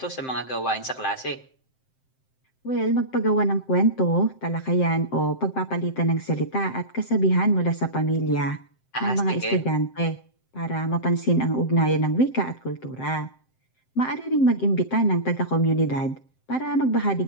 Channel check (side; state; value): right; late; 7.7 ms